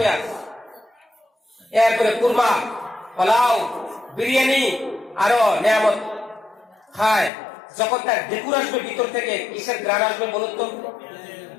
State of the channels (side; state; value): right; drops out; at 7.3 s